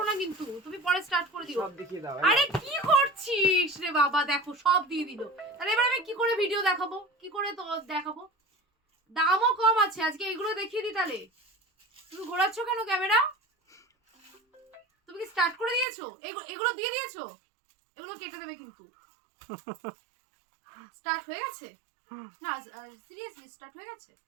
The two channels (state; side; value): drops out; left; at 15.9 s